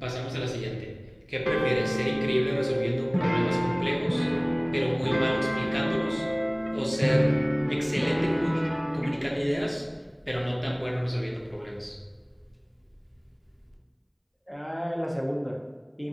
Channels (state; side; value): identical; both; correlation 1.00